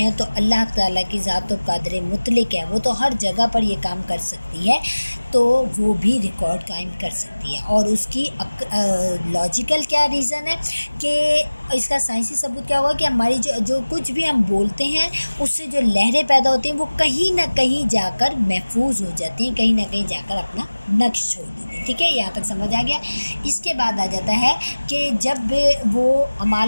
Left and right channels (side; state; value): both; inverted; correlation -1.00